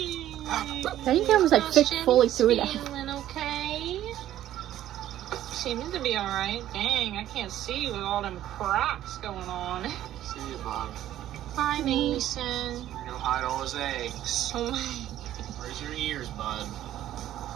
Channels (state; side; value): quieter; left; 12.7 dB